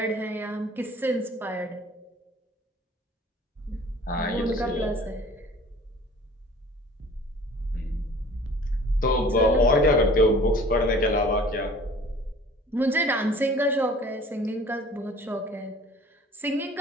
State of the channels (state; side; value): normal; both; correlation 0.48